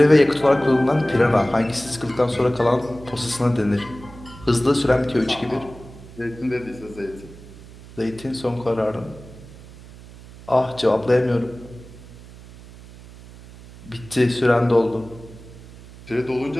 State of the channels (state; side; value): noise; right; hum, 19 dB below the sound